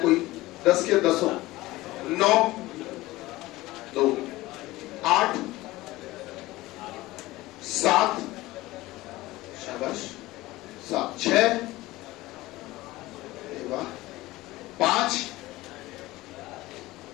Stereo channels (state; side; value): quieter; right; 18.6 dB